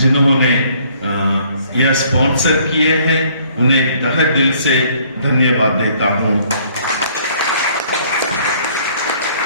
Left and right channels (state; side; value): inverted; both; correlation -0.60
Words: यह स्पॉन्सर किए हैं उन्हें तहे दिल से धन्यवाद देता हूं।